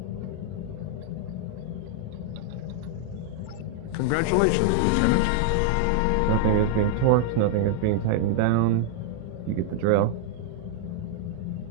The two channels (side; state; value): both; different; correlation 0.00